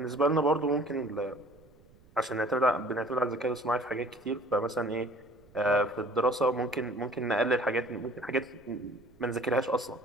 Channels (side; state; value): right; noise; rumble, 28 dB below the sound